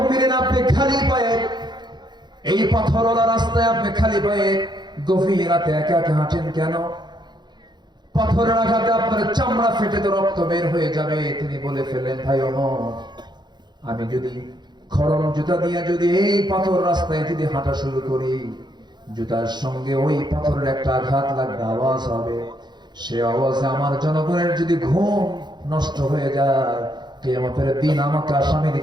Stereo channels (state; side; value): late; left; 0.21 ms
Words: আপনি খালি পায়ে এই পাথরওয়ালা রাস্তায় আপনি খালি পায়ে গভীর রাতে একা একা হাঁটেন কেন? পাথরের আঘাতে আপনার চামড়া ফেটে তো রক্ত বের হয়ে যাবে। তিনি বলে ফেললেন, ভাই ওমর, আমি যদি খড়ম জুতা দিয়ে যদি এই পাথর রাস্তায় যদি হাঁটা শুরু করি, জুতার সঙ্গে ওই পাথরের একটা আঘাত লাগবে, আওয়াজ হবে। সে আওয়াজে আমার জনগণের যদি ঘুম নষ্ট হয়ে যায়, কিয়ামতের দিন আমাকে আসামির